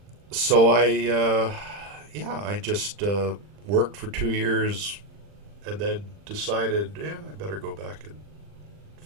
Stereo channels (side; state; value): left; late; 40 ms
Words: So I just worked for 2 years and then decided, I better go back and